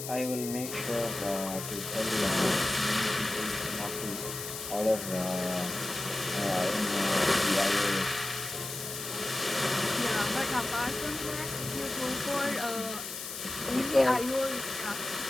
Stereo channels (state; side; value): noise; left; hiss, 8 dB below the sound